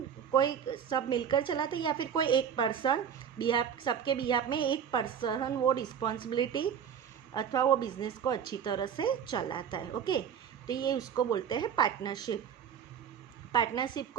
कोई सब मिलकर चलाते या फिर कोई एक पर्सन सबके बिहाफ में एक पर्सन वो रिस्पॉन्सिबिलिटी अथवा वो बिजनेस को अच्छी तरह से चलाता है। ओके, तो ये उसको बोलते हैं पार्टनरशिप। पार्टनरशिप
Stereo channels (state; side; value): quieter; left; 8.1 dB